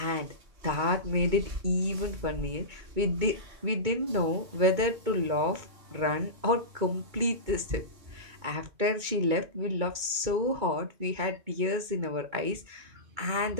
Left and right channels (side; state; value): left; late; 2.2 ms